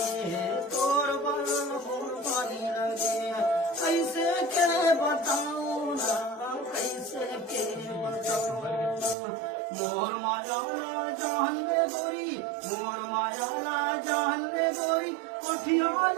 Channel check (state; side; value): drops out; left; at 9.2 s